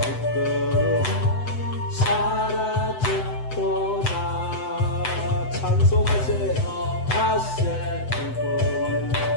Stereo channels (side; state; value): right; late; 7.9 ms